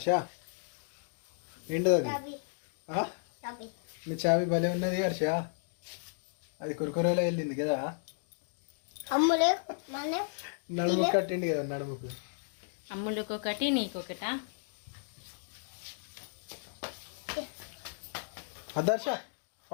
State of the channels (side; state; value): right; silent; digital silence